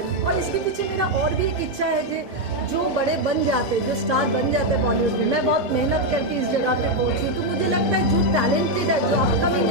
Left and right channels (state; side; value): normal; both; correlation 0.02